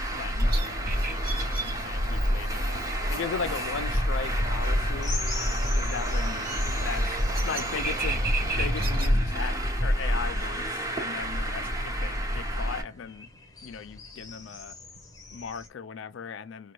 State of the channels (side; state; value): both; normal; correlation 0.65